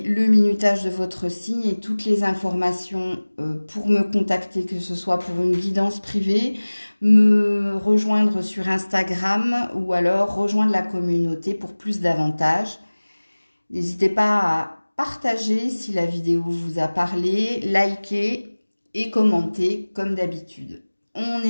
minutage de votre signe et toutes les informations pour me contacter, que ce soit pour une guidance privée, me rejoindre sur Instagram ou alors rejoindre la communauté pour plus d'avantages. N'hésitez pas à partager si la vidéo vous a parlé, liker et commenter comme d'habitude. On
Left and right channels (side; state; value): both; inverted; correlation -1.00